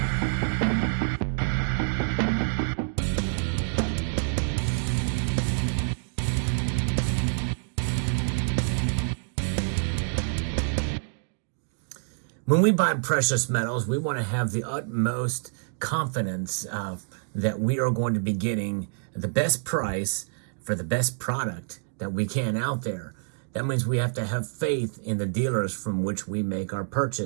When we buy precious metals, we want to have the utmost confidence that we are going to be getting the best price for the best product that we can out there. That means we have to have faith in the dealers from which we make our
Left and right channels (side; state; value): left; silent; digital silence